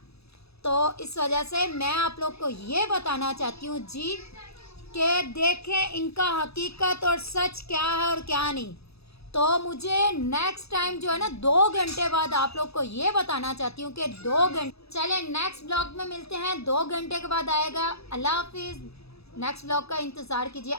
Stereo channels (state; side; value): late; right; 0.78 ms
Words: तो इस वजह से मैं आप लोग को ये बताना चाहती हूँ जी कि देखें इनका हकीकत और सच क्या है और क्या नहीं। तो मुझे नेक्स्ट टाइम जो है ना 2 घंटे बाद आप लोग को ये बताना चाहती हूँ कि 2 घंटे, चले नेक्स्ट ब्लॉग में मिलते हैं, 2 घंटे के बाद आएगा। अल्लाह हाफिज़, नेक्स्ट ब्लॉग का इंतज़ार कीजिए।